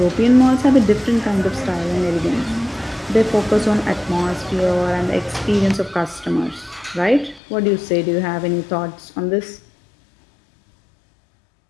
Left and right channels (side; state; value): right; drops out; at 7.4 s